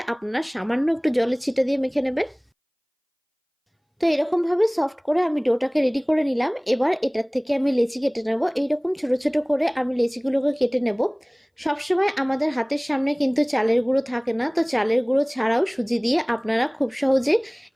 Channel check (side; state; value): both; identical; correlation 1.00